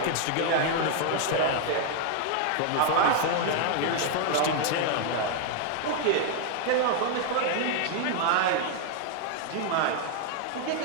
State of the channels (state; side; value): different; both; correlation 0.00